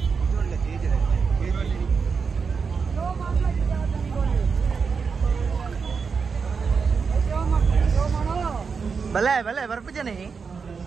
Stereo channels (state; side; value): quieter; left; 5.5 dB